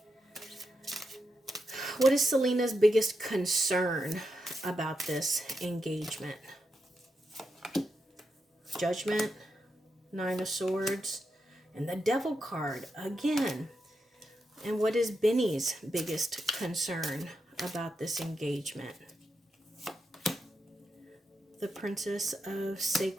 What is Selena's biggest concern about this engagement? Judgment, 9 of Swords, and the Devil card again. And what is Benny's biggest concern about this engagement? The Princess of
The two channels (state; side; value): normal; both; correlation 0.85